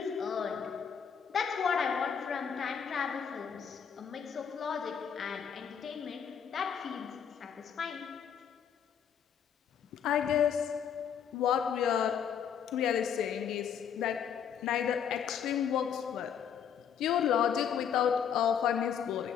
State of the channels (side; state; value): right; quieter; 8.0 dB